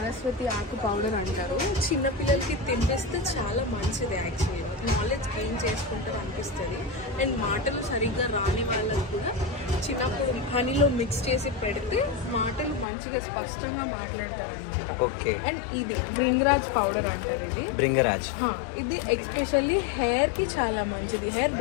ఆకు పౌడర్ అంటారు. చిన్నపిల్లలకి తినిపిస్తే చాలా మంచిది. యాక్చువల్లీ నాలెడ్జ్ గెయిన్ చేసుకుంటారు అనిపిస్తుంది. అండ్ మాటలు సరిగ్గా రాని వాళ్ళకి కూడా చిన్నప్పుడు హనీలో మిక్స్ చేసి పెడితే మాటలు మంచిగా స్పష్టంగా మాట్లాడతారు. ఓకే, అండ్ ఇది భృంగరాజ్ పౌడర్ అంటారు. ఇది భృంగరాజ్, ఇది ఎక్స్పెషల్లీ హెయిర్ కి చాలా మంచిది. హెయిర్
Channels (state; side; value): drops out; right; at 12.9 s